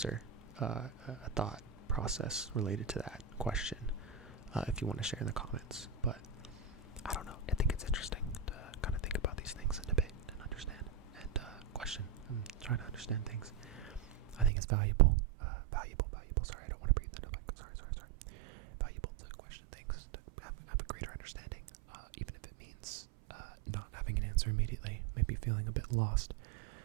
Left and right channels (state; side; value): drops out; left; at 14.5 s